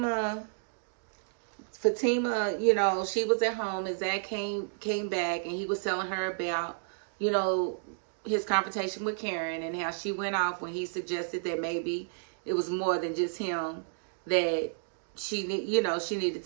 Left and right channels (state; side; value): silent; left; digital silence